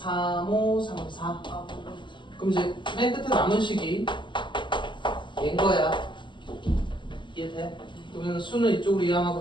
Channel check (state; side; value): late; right; 0.23 ms